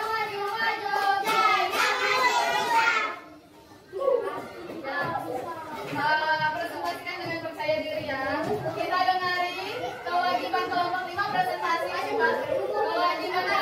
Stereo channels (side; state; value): both; identical; correlation 1.00